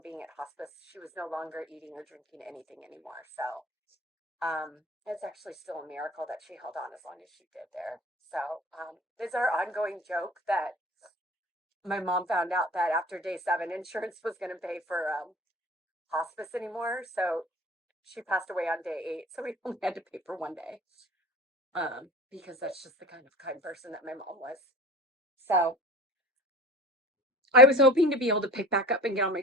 being at hospice, she was no longer eating or drinking anything anymore. So it's actually still a miracle that she held on as long as she did there. So it's our ongoing joke that my mom found out that after day seven, insurance was going to pay for hospice anymore. So she passed away on day eight. So we only had to pay for one day because that's just the kind of kind person that my mom was. So I was hoping to be able to pick back up and get on my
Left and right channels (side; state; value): both; normal; correlation 0.40